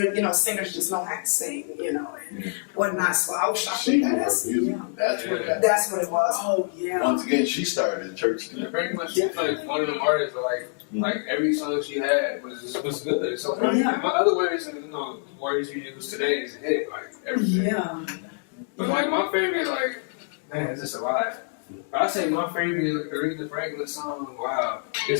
singers just know how to sing, and whatnot. So I was shocked with that. That's what happened. That's what it was. Oh, yeah. Once again, she started at church. Pretty much, she's like one of them artists like every song she had was good. So Yeah. in my other words, words you use today is a hit, like everything. Yeah. But like my favorite, man, is this alive? I say my favorite Aretha Franklin song. Wow,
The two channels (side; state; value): right; silent; 61 dB below the other